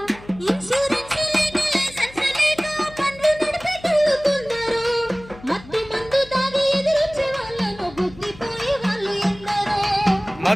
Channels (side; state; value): left; noise; hum, 20 dB below the sound